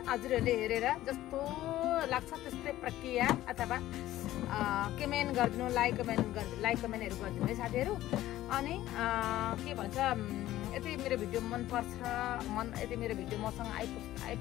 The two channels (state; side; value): quieter; right; 14.6 dB